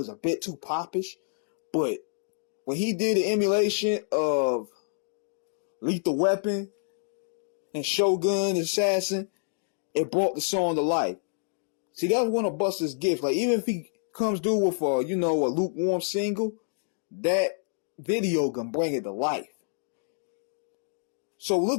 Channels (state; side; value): silent; right; digital silence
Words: a bit too popish. But when he did the emulation of Lethal Weapon and Shogun Assassin, it brought the song to life. See, that was one of Busta's gifts. Like, even if he comes through with a lukewarm single, that video can bring it to life. So